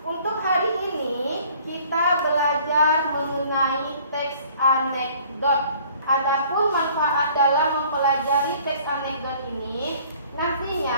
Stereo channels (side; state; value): both; inverted; correlation -0.54